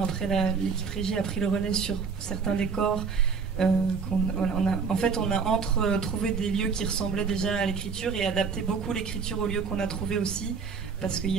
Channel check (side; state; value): left; quieter; 5.6 dB